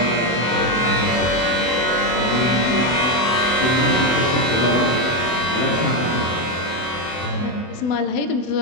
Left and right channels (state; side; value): late; right; 24 ms